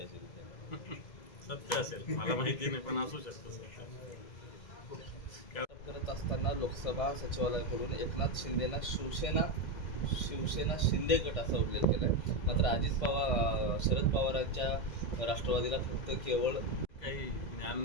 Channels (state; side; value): late; right; 2.0 ms